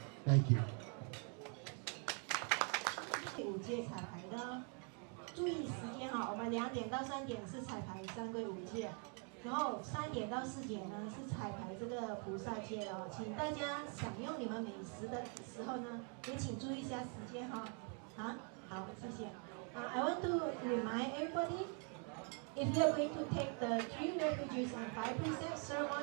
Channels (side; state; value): left; quieter; 39.5 dB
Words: Thank you. 5届彩排的，注意时间哈，我们2点到3点是彩排三归5届，然后3点到4点呢是彩排这个菩萨戒哦，请大家享用你们美食的时候呢，也请注意一下时间哈。好，谢谢。I want to remind everybody, if you are going to take the 3 refuges and 5 precepts